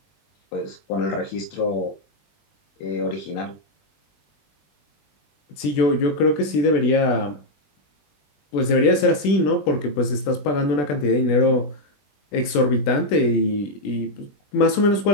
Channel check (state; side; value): late; right; 21 ms